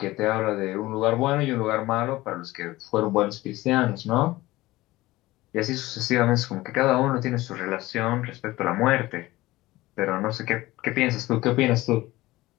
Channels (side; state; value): right; quieter; 18.5 dB